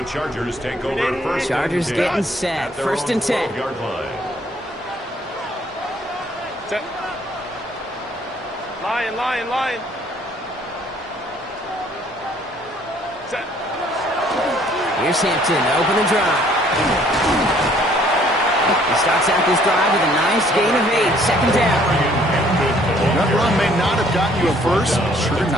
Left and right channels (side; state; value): both; normal; correlation 0.61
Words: Chargers take over 1st. Chargers and 10 getting set. at their 1st own and 10. 12-yard line. Set. Line. Set. Here's Hampton to open the drive. He starts out this drive with a nice gain of 8. 2nd down. That run may not have gotten you a first, but sure,